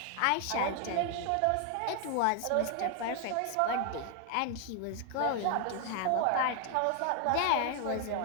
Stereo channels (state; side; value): different; both; correlation 0.00